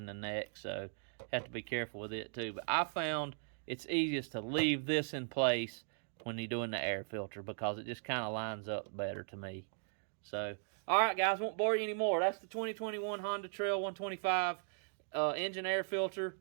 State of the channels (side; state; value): left; silent; digital silence